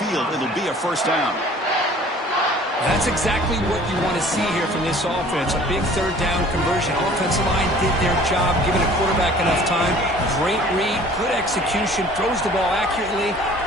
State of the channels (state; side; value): normal; both; correlation 0.50